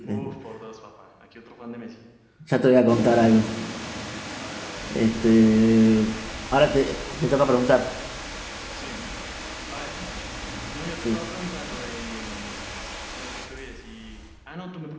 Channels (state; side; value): identical; both; correlation 1.00